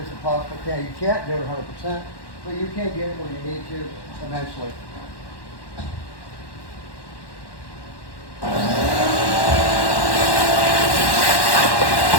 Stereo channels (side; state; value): right; late; 1.1 ms